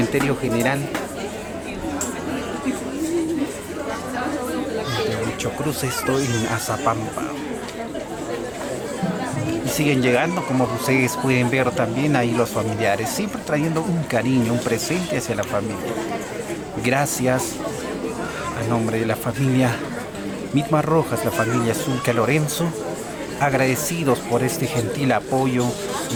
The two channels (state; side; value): identical; both; correlation 1.00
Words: general de Huichocruz, esto en Azapampa. Y siguen llegando, como ustedes pueden ver también ahí los familiares, siempre trayendo un cariño, un presente hacia la familia. Gracias a nombre de la familia Mitma Rojas, la familia Zulca Lorenzo, agradecidos por este gentil apoyo